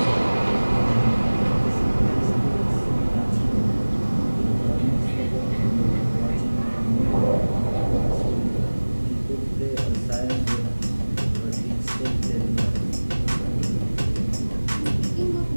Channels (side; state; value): both; inverted; correlation -1.00